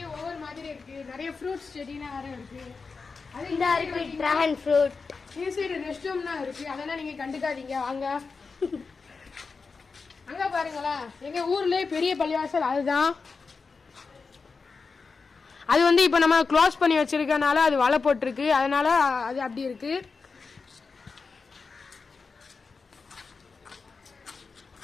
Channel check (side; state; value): right; quieter; 4.7 dB